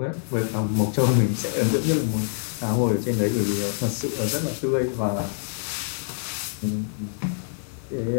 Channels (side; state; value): right; silent; 57 dB below the other